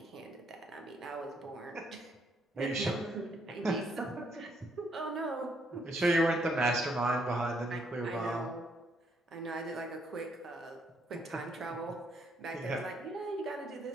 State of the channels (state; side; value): normal; both; correlation 0.72